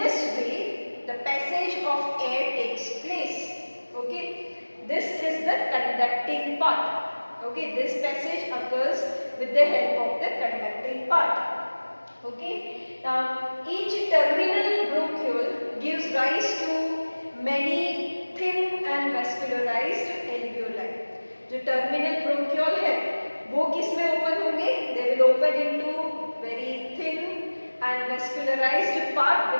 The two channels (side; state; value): both; inverted; correlation -1.00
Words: way the passage of air takes place. Okay? This is the conducting part. Okay? This passage occurs with the help of the conducting part. Okay, now each terminal bronchiole gives rise to many thin and vascularized alveoli. जो terminal bronchiole है, वो किस में open होंगे? They will open into very thin and vascularized part